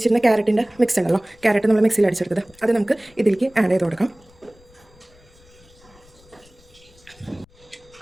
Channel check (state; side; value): noise; left; rumble, 28 dB below the sound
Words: ക്യാരറ്റിൻ്റെ മിക്സ് ഉണ്ടല്ലോ, ക്യാരറ്റ് നമ്മൾ മിക്സിയിൽ അടിച്ചെടുത്തത്, അത് നമുക്ക് ഇതിലേക്ക് ആഡ് ചെയ്ത് കൊടുക്കാം.